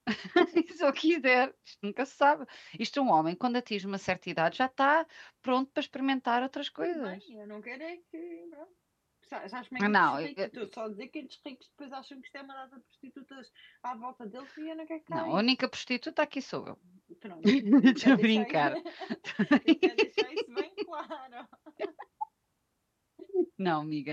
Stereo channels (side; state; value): both; identical; correlation 1.00